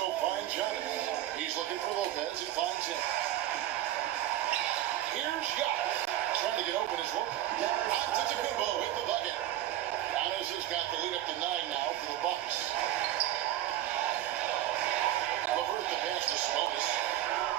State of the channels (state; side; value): quieter; left; 13.4 dB